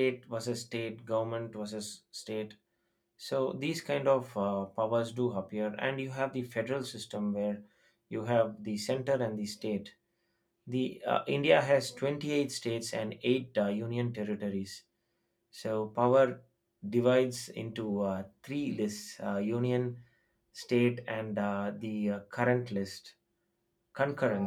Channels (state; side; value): identical; both; correlation 1.00